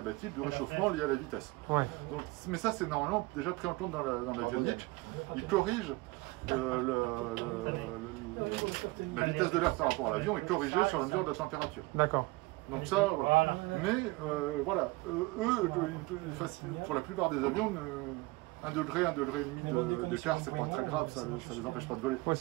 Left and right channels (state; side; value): quieter; left; 22.3 dB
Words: du réchauffement lié à la vitesse. Ouais. Donc, mais ça, c'est normalement déjà pris en compte dans l'avionique. Ils corrigent la vitesse de l'air par rapport à l'avion est corrigée sur la mesure de la température. D'accord. Donc ça, voilà. Mais voilà, eux, pour la plupart des avions, 1 degré, 1,5 degré d'écart, c'est pas très grave, ça les empêche pas de voler. Ouais,